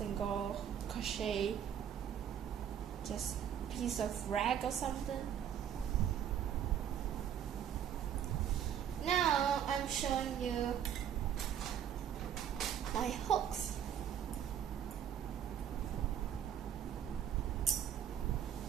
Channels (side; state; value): left; quieter; 9.3 dB